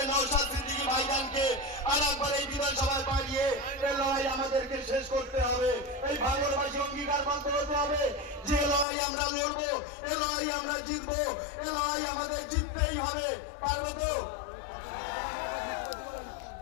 নওশাদ সিদ্দিকী ভাইজানকে আর একবার এই বিধানসভায় পাঠিয়ে এই লড়াই আমাদেরকে শেষ করতে হবে। এই ভাঙড়বাসী অঙ্গীকারবদ্ধ হতে হবে যে লড়াই আমরা লড়বো, এ লড়াই আমরা জিতবো, এ লড়াই আমাদের জিততেই হবে। পারবে তো?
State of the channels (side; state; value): right; drops out; at 8.8 s